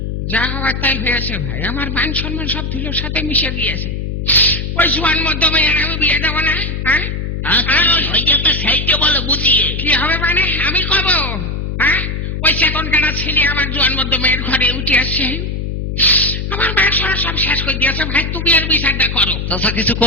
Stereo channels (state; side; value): noise; left; hum, 3 dB below the sound